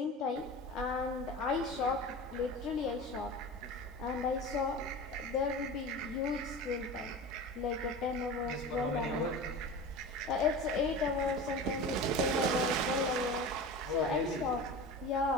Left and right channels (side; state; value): both; normal; correlation 0.32